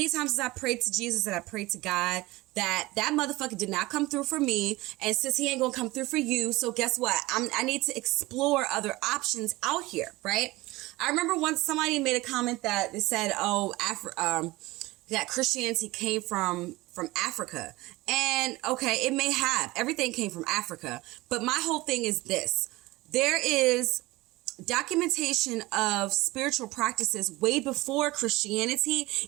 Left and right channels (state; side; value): quieter; left; 20.2 dB